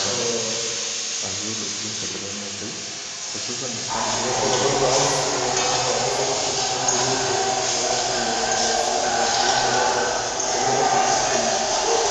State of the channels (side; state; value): both; identical; correlation 1.00